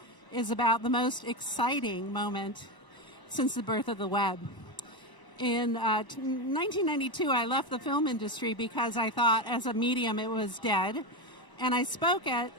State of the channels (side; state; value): right; late; 1.0 ms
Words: is about the most exciting moment since the birth of the web. In 1992, I left the film industry because I thought as a medium it was dead. And I spoke at